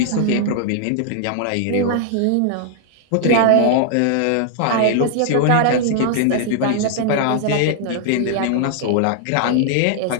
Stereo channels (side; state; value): both; different; correlation 0.00